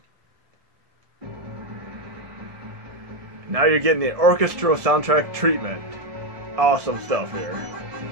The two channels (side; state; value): left; late; 1.7 ms